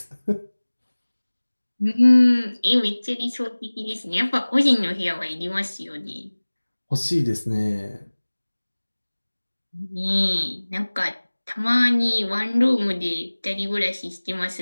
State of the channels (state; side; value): inverted; both; correlation -1.00